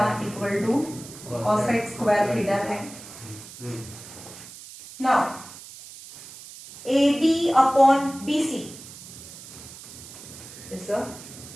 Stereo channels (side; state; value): right; noise; hiss, 16 dB below the sound